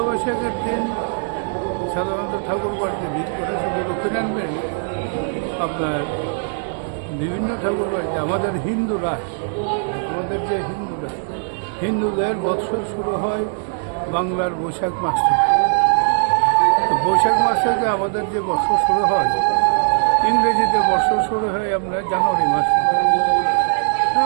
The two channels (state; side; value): silent; left; digital silence